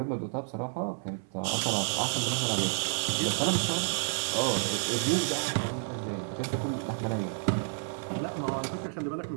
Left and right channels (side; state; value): left; silent; 58 dB below the other